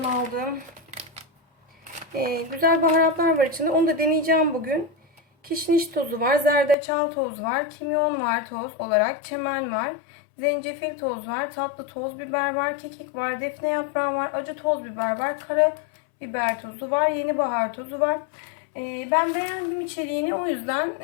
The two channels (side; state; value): right; drops out; at 6.8 s